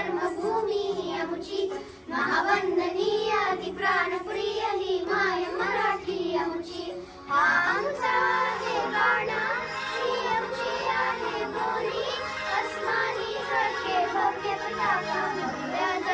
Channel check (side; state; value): both; identical; correlation 1.00